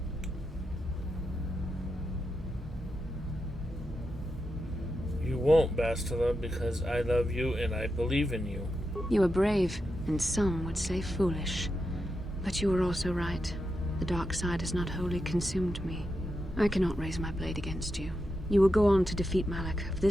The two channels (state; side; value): normal; both; correlation 0.87